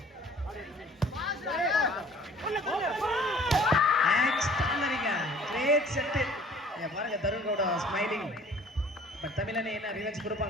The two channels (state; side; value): normal; both; correlation 0.51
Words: பாருங்க தருண் கவுடா ஸ்மைலிங். பட் தமிழனை என்ன ரிவெஞ்ச்